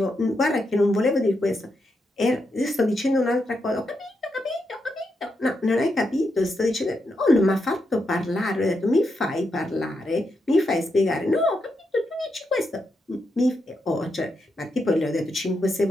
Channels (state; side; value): normal; both; correlation 0.83